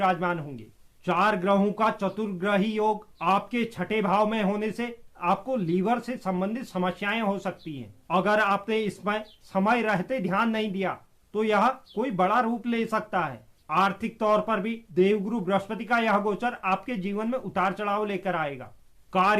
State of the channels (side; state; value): both; identical; correlation 1.00